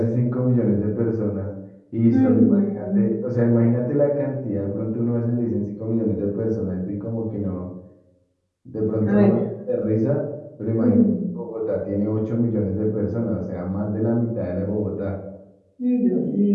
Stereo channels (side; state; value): both; identical; correlation 1.00